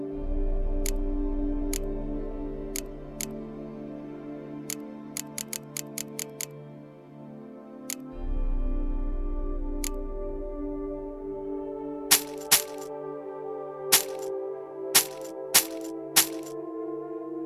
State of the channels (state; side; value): identical; both; correlation 1.00